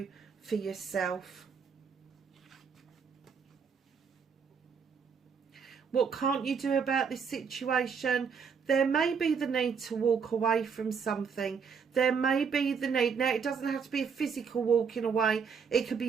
for yourself. What can't you do about this situation? There may be the need to walk away from something. There may be the need. Now, it doesn't have to be a physical walking away. It could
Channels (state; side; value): quieter; left; 6.2 dB